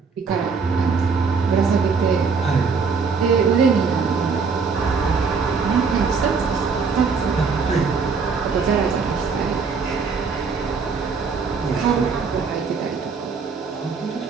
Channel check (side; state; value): left; quieter; 5.2 dB